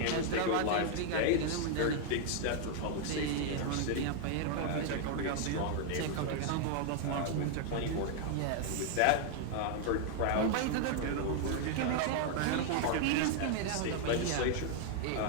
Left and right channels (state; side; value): different; both; correlation 0.00